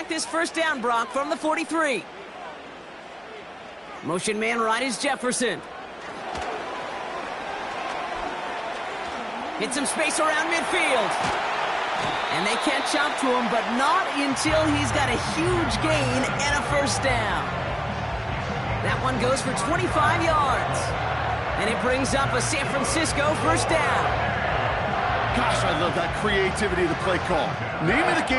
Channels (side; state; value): both; identical; correlation 1.00